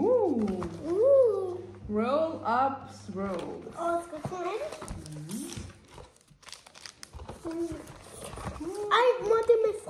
rolls. Og skal jeg smage det? Ej, må det med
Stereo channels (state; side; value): identical; both; correlation 1.00